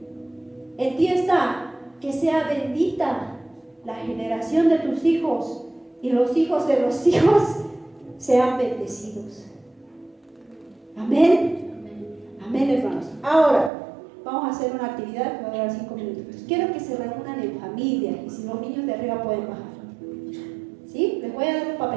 En ti está que sea bendita la generación de tus hijos y los hijos de los hijos sean bendecidos. Amén. Amén, hermanos. Ahora vamos a hacer una actividad que va a durar 5 minutos. Quiero que se reúnan en familia y si los niños de arriba pueden bajar. ¿Sí? Les voy a dar un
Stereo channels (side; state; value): left; drops out; at 13.7 s